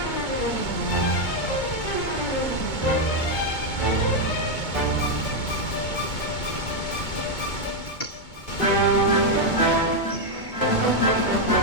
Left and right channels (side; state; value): right; late; 2.2 ms